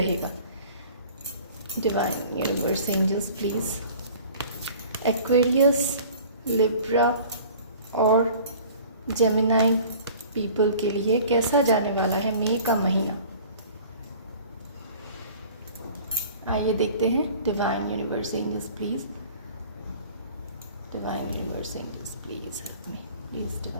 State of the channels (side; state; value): both; inverted; correlation -0.46